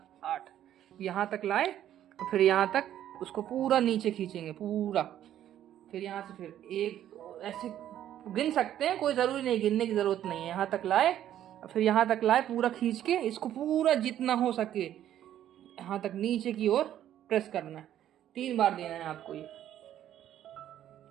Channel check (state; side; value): quieter; left; 11.4 dB